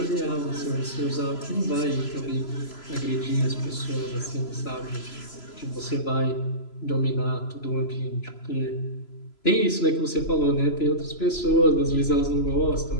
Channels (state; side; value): late; right; 3.0 ms